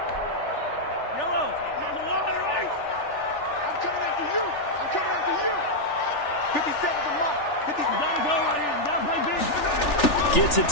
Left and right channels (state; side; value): late; right; 3.4 ms